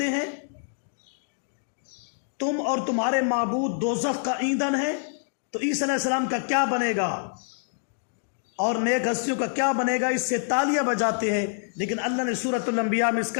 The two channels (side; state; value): right; silent; digital silence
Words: ہیں، تم اور تمہارے معبود دوزخ کا ایندھن ہے، تو عیسیٰ علیہ السلام کا کیا بنے گا اور نیک ہستیوں کا کیا بنے گا، اس سے تالیاں بجاتے ہیں. لیکن اللہ نے سورۃ الانبیاء میں اس